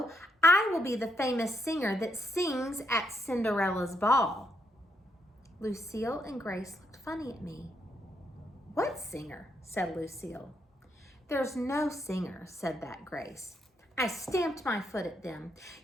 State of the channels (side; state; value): both; normal; correlation 0.77